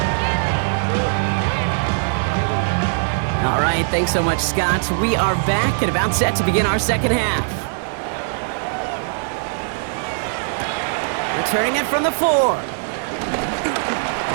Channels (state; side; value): silent; left; 61 dB below the other